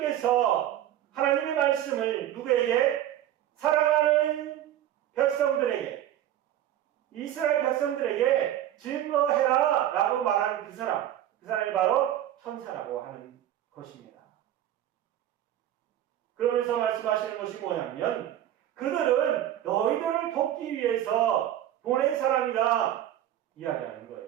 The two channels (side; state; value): left; quieter; 12.0 dB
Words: 하나님의 말씀을 누구에게? 사랑하는 백성들에게, 이스라엘 백성들에게 증거해라 라고 말하는 그 사람이 바로 천사라고 하는 것입니다. 그러면서 말씀하시는 것이 뭐냐면 그들은 너희들을 돕기 위해서 보낸 사람이다 이야기하는